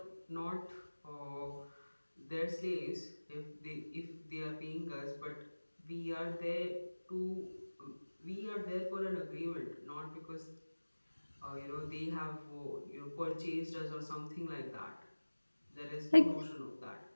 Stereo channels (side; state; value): both; inverted; correlation -1.00